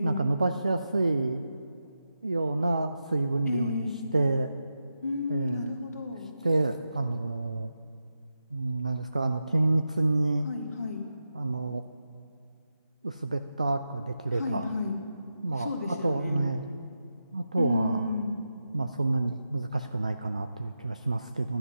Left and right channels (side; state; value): both; inverted; correlation -0.89